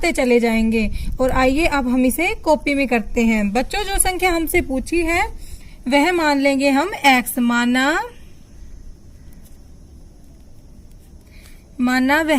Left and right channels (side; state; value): both; identical; correlation 1.00